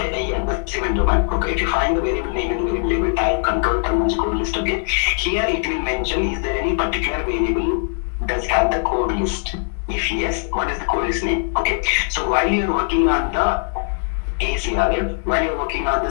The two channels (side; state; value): right; silent; 65 dB below the other